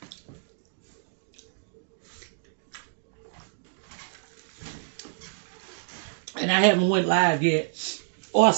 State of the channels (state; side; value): silent; left; digital silence